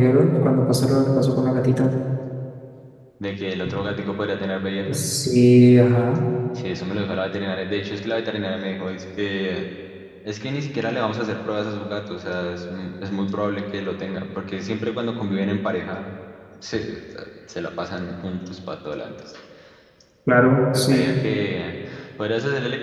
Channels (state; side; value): identical; both; correlation 1.00